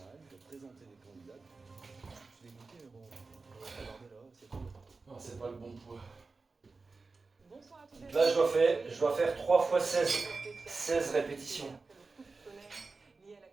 de présenter des candidats. Je suis dégoûté, mais bon, on va regarder là, c'est tout. Non, c'est pas le bon poids. Bonsoir à tous les Là, je dois faire 3 fois 16 répétitions. Lié à la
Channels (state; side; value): quieter; left; 4.0 dB